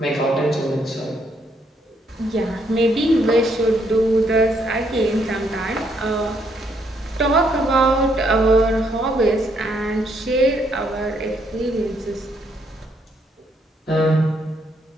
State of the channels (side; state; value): both; normal; correlation 0.72